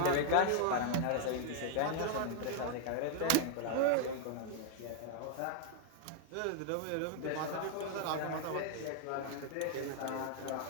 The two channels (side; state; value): both; different; correlation 0.00